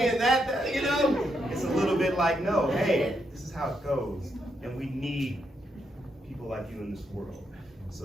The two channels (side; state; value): both; normal; correlation 0.80